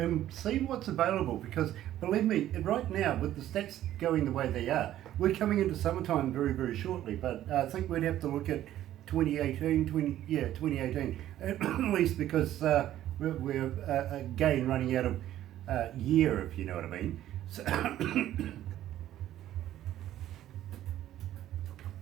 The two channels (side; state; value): left; quieter; 12.8 dB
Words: see what's available, because believe me, right now with the stats going the way they are, we're coming into summertime very, very shortly, but I think we'd have to look at 2018, at least, because we're again running out of year, if you know what I mean. So